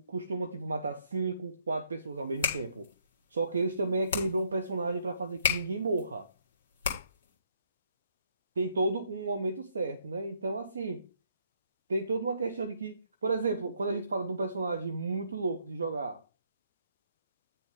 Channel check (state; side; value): inverted; both; correlation -0.70